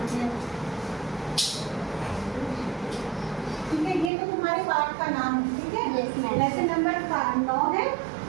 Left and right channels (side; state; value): left; drops out; at 4.1 s